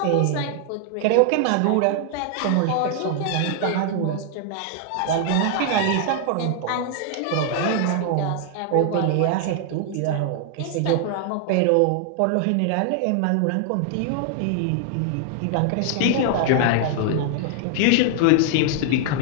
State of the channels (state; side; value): different; both; correlation 0.00